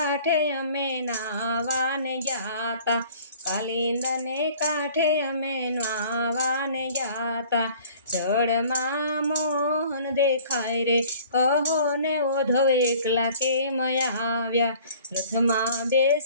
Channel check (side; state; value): both; inverted; correlation -0.50